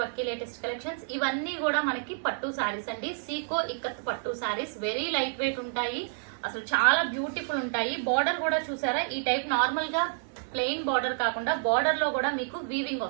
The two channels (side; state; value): left; silent; digital silence